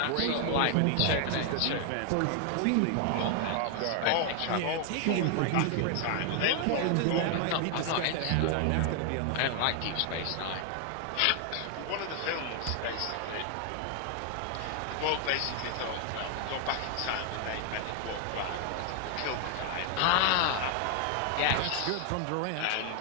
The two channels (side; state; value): both; different; correlation 0.00